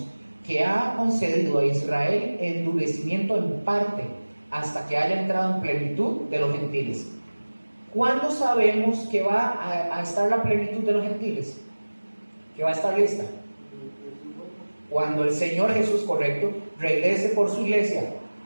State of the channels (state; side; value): inverted; both; correlation -1.00